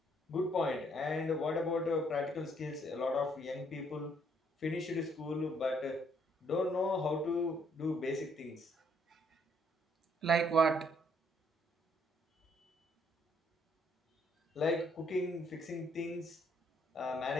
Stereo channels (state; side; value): normal; both; correlation 0.68